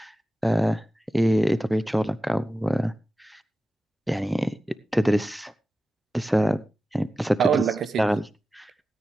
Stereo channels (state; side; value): normal; both; correlation 0.94